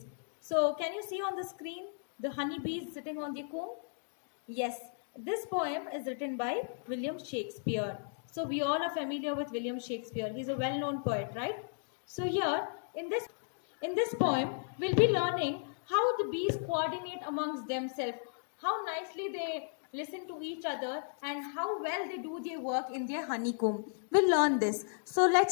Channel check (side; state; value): right; silent; digital silence